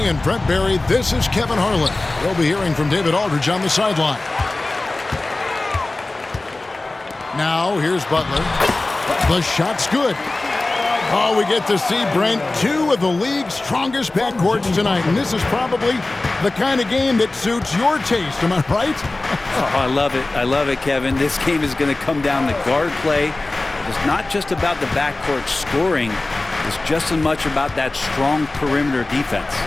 and Brent Barry, this is Kevin Harlan. We'll be hearing from David Aldridge on the sideline. Now, here's Butler. The shot's good. Oh, we get to see, Brent, two of the league's strongest backcourts tonight. And this is probably the kind of game that suits your taste. Am I right? Oh, I love it. I love it, Kevin. This game is going to come down to guard play. It's not just about the backcourt scoring. It's just as much about that strong perimeter defense.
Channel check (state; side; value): quieter; right; 3.0 dB